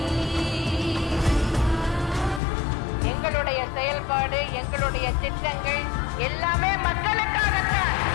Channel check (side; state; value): right; drops out; at 2.4 s